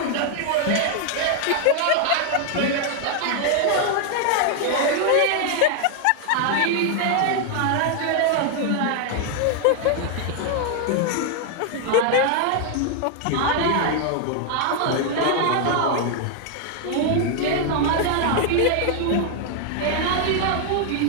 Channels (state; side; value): different; both; correlation 0.00